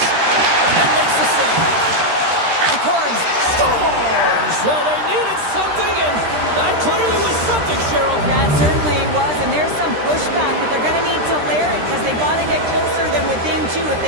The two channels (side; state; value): left; late; 13 ms